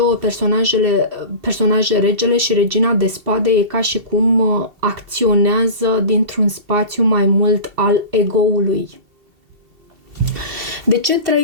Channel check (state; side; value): late; left; 2.7 ms